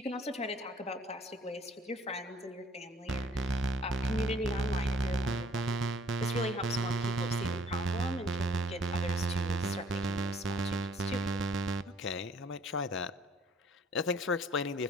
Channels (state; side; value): normal; both; correlation 0.58